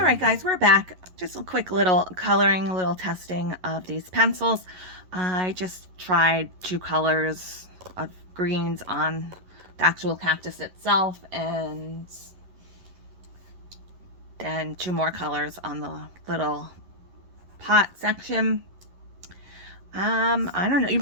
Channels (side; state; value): left; late; 11 ms